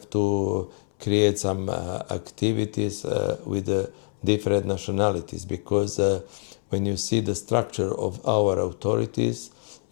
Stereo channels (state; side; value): silent; right; 61 dB below the other